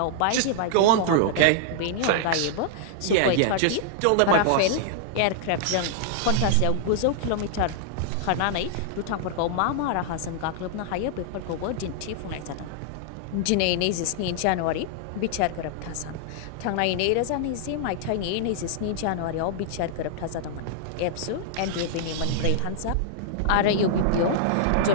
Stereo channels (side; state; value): both; different; correlation -0.01